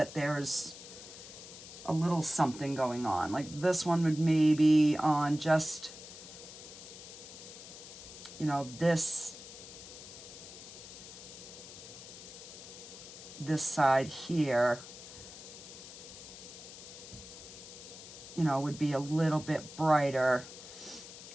there's a little something going on. Like this one would maybe on just, you know, this side here, you know, would be a little bit brighter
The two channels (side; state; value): left; noise; hiss, 14 dB below the sound